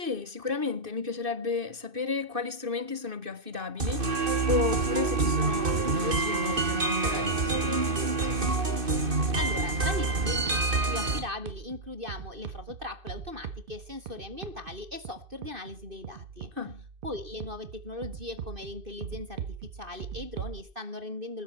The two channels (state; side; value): late; left; 2.6 ms